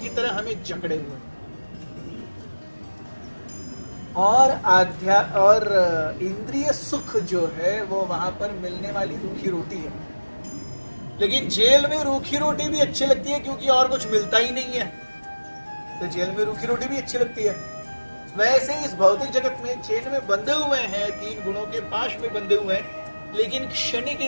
तरह हमें जकड़े हुए और इंद्रिय सुख जो है वो वहां पर मिलने वाली रूखी रोटी है। लेकिन जेल में रूखी रोटी भी अच्छी लगती है क्योंकि और कुछ मिलता ही नहीं है, तो जेल में रूखी रोटी भी अच्छी लगती है। वैसे इस भौतिक जगत में चेन में बंधे हुए हैं, 3 गुणों के पाश में बंधे हुए हैं, लेकिन क्षणिक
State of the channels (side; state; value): both; inverted; correlation -1.00